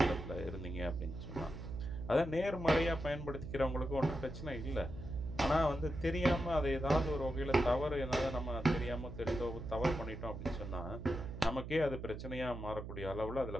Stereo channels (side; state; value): right; noise; hum, 8 dB below the sound